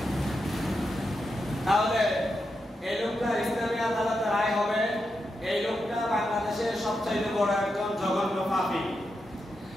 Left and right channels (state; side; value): normal; both; correlation 0.86